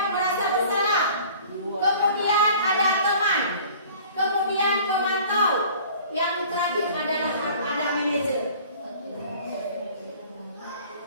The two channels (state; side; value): inverted; both; correlation -0.48